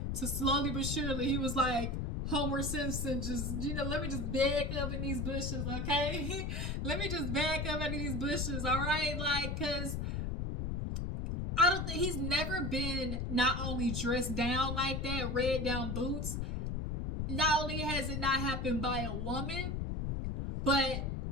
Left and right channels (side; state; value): left; noise; rumble, 2 dB below the sound